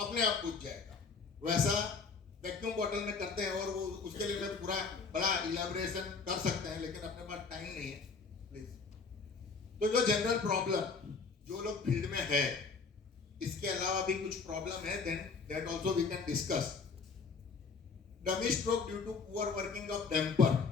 अपने आप बुझ जाएगा। वैसा वैक्यूम बॉटल में करते हैं, और वो उसके लिए मैं पूरा बड़ा इलैबोरेशन कर सकते हैं, लेकिन अपने पास टाइम नहीं है प्लीज। तो जो जनरल प्रॉब्लम जो लोग फील्ड में है, इसके अलावा भी कुछ प्रॉब्लम है, then that also we can discuss. Dummy stroke due to poor working of damper.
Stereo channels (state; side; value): quieter; right; 4.9 dB